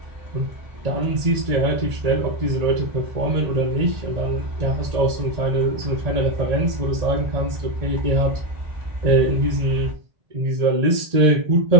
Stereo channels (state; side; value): late; left; 1.8 ms